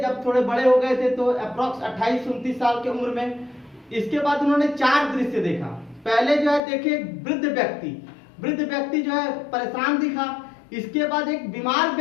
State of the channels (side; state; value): right; drops out; at 6.6 s